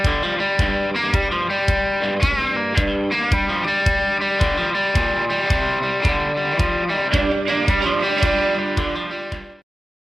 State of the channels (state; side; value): normal; both; correlation 0.96